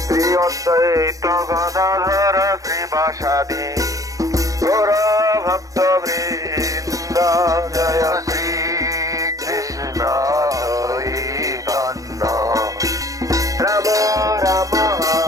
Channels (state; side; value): late; left; 0.17 ms